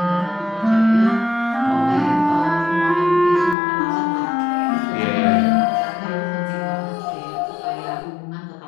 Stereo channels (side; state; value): right; drops out; at 3.6 s